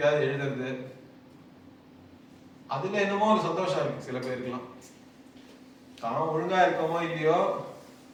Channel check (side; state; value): both; identical; correlation 1.00